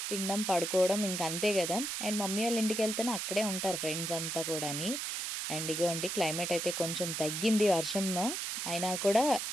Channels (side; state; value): right; noise; hiss, 3 dB below the sound